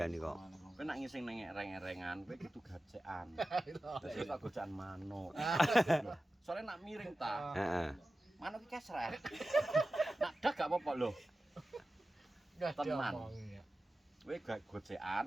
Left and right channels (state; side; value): normal; both; correlation 0.94